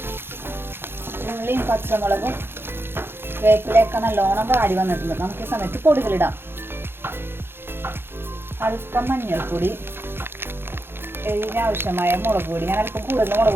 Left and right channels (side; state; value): left; late; 0.11 ms